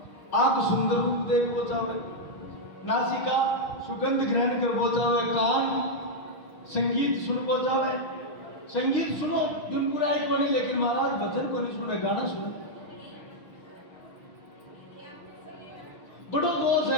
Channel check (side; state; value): right; late; 6.2 ms